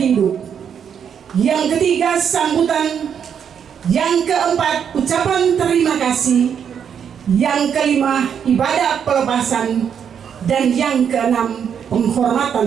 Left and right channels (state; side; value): quieter; left; 7.9 dB